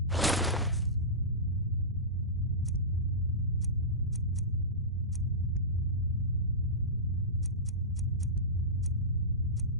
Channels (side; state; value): both; normal; correlation -0.20